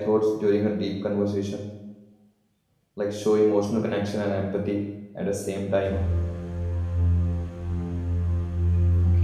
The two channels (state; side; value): identical; both; correlation 1.00